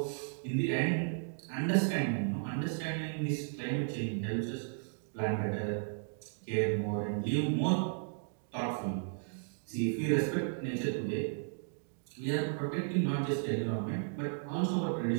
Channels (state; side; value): silent; left; digital silence